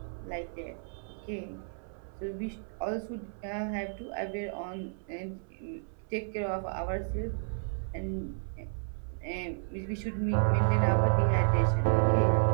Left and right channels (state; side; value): silent; left; 56 dB below the other